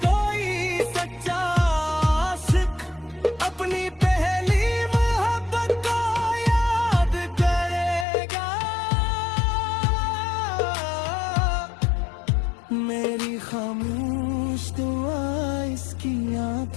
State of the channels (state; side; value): drops out; right; at 8.1 s